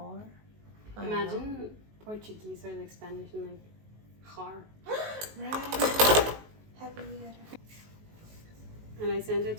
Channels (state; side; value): late; left; 19 ms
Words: Imagine Portuguese or like Spanish and like har. Right. Happy. And I sent it